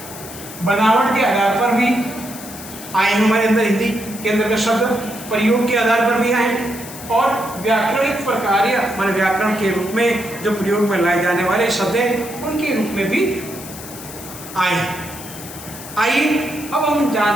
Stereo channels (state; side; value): noise; left; hiss, 13 dB below the sound